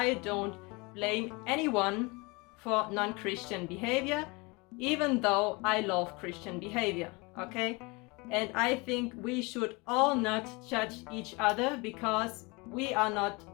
don't blame anyone for non-Christian behavior, even though I love Christian behavior, okay? And I think we should all not judge each other because we are not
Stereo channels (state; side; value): quieter; right; 26.8 dB